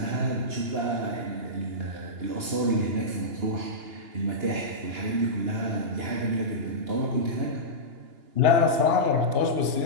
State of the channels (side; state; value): left; late; 2.9 ms